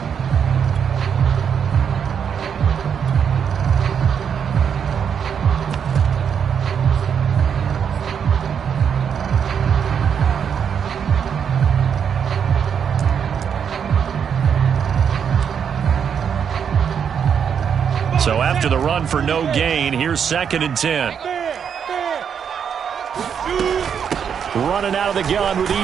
So after the run for no gain, here's second and 10. Running out of the gun with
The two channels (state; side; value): quieter; left; 7.5 dB